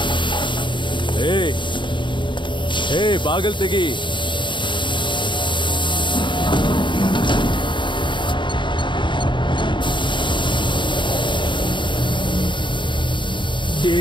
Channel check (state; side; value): late; right; 0.23 ms